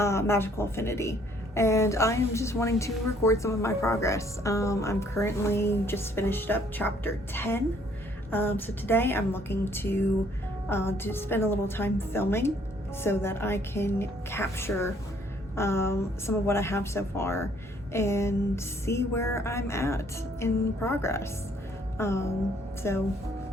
Affinity. And I'm just wanting to record some of my progress. I'm currently just finished up chapter 10. So today I'm looking to spend a little time filming so that I can capture some of what I have so far and see where I'm at in progress. So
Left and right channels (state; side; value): normal; both; correlation 0.63